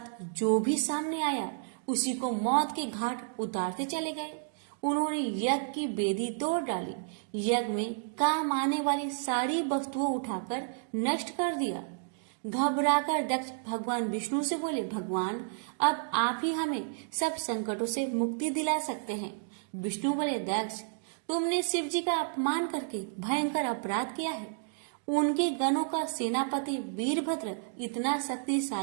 जो भी सामने आया उसी को मौत के घाट उतारते चले गए। उन्होंने यज्ञ की वेदी तोड़ डाली, यज्ञ में काम आने वाली सारी वस्तुओं उठाकर नष्ट कर दिया। घबराकर दक्ष भगवान विष्णु से बोले, भगवान, अब आप ही हमें सब संकटों से मुक्ति दिला सकते हैं। विष्णु बोले, दक्ष, तुमने शिव जी का अपमान करके भयंकर अपराध किया है। उनके गणों का सेनापति वीरभद्र इतना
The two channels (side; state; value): left; silent; digital silence